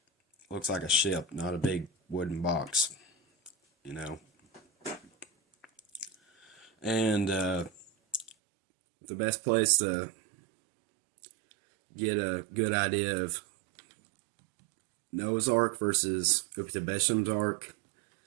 looks like a ship, not a big wooden box, you know. And the best place to get a good idea of Noah's Ark versus Uptabesham's Ark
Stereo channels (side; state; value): left; drops out; at 8.3 s